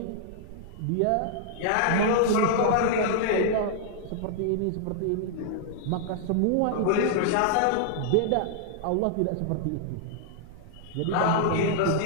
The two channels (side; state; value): both; different; correlation -0.01